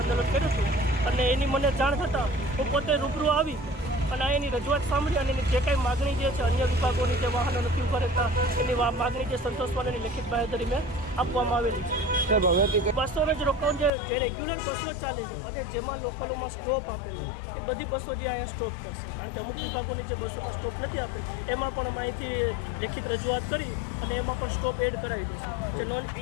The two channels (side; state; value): right; drops out; at 13.9 s